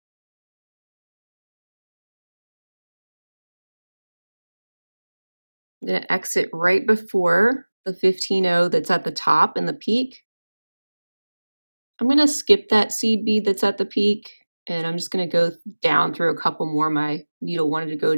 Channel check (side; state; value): both; inverted; correlation -1.00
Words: I'm going to exit right before the 15O that's at the top in the peak. I'm going to skip that seed bead that's at the peak, and I'm just going to go down through a couple more. My needle wanted to go